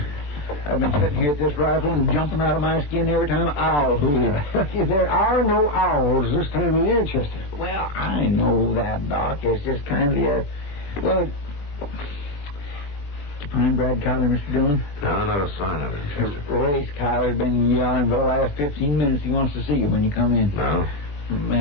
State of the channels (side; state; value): right; late; 20 ms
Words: I've been sitting here at this rifle and jumping out of my skin every time an owl hooted. There are no owls this time of year, Chester. Well, I know that, Doc. It's just kindly well, did you find Brad Kyler, Mr. Dillon? No, not a sign of him, Chester. Race Kyler's been yelling for the last 15 minutes. He wants to see you when you come in. No?